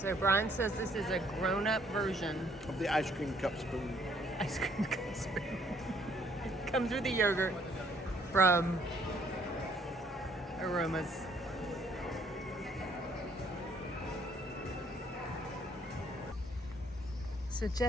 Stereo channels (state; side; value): normal; both; correlation 0.64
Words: Brian says this is a grown-up version Of the ice cream cup spoon. ice cream comes with. It comes with the yogurt from Aromas. So